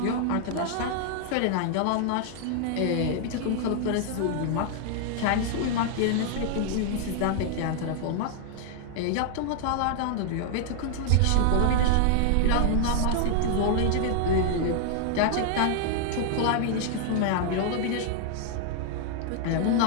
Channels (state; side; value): different; both; correlation 0.00